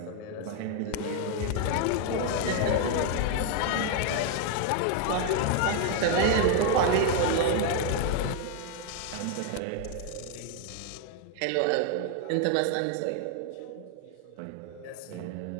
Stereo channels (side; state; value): both; different; correlation 0.00